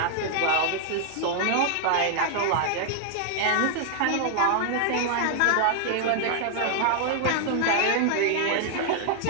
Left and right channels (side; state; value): both; different; correlation 0.00